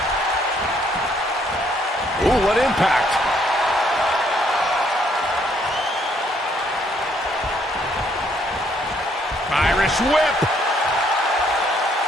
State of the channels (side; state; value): both; normal; correlation 0.68